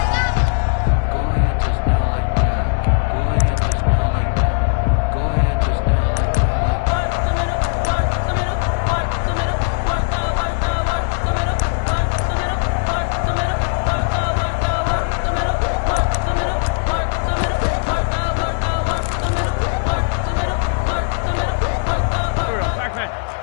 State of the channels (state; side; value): silent; right; 57 dB below the other